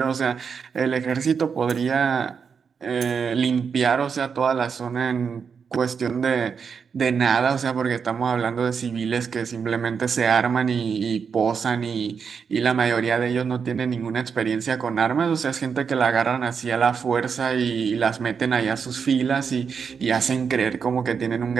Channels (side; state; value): left; quieter; 6.2 dB